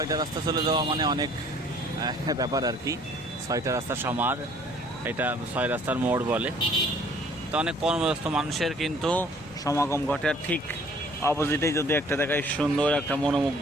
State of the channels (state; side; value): normal; both; correlation 0.57